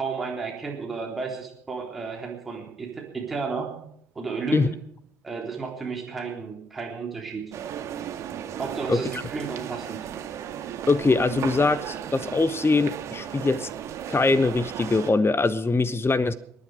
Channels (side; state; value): both; normal; correlation 0.78